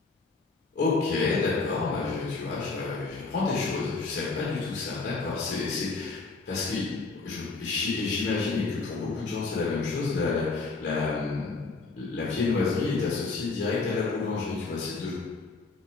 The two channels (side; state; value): right; quieter; 3.9 dB